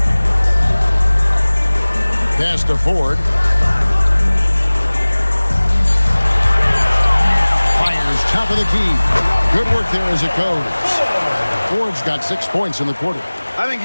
Pass to Ford. Fires top of the key. Good work there as it goes. Ford's got 6 points in the quarter. I think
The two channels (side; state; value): both; inverted; correlation -1.00